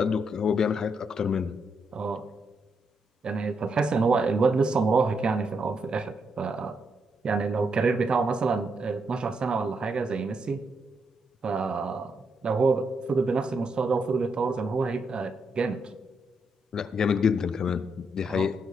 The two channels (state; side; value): normal; both; correlation 0.80